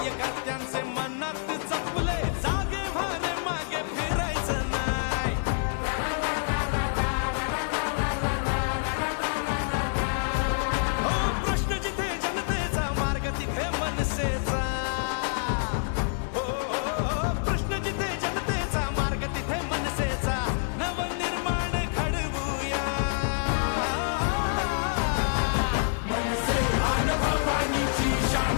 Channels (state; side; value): silent; right; digital silence